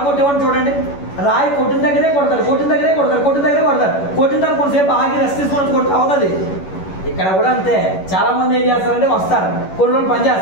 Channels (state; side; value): late; right; 11 ms